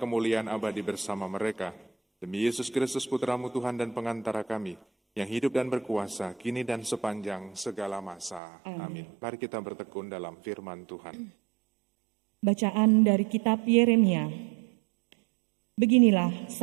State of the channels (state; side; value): drops out; left; at 8.4 s